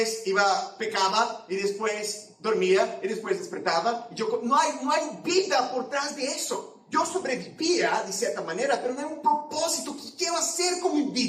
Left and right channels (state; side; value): identical; both; correlation 1.00